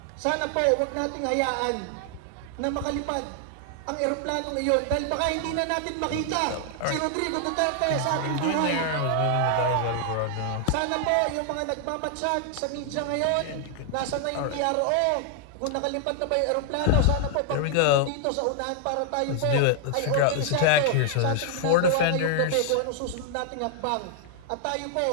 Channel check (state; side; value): different; both; correlation 0.00